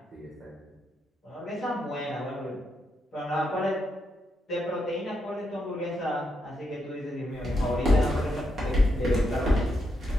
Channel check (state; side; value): normal; both; correlation 0.81